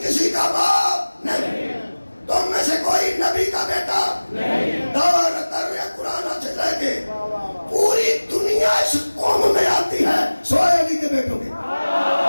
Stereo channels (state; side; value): inverted; both; correlation -1.00